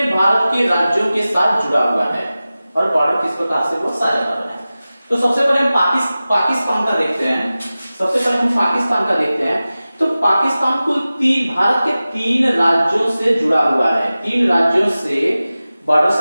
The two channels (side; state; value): both; inverted; correlation -0.96